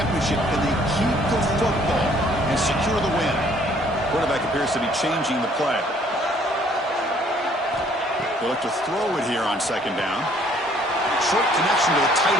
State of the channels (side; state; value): both; normal; correlation 0.61